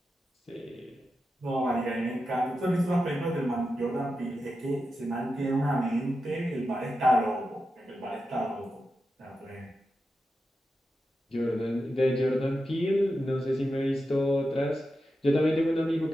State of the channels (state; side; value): normal; both; correlation 0.89